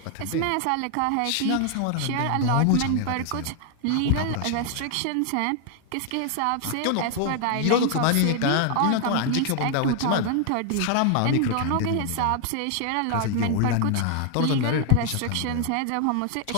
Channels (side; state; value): both; different; correlation 0.00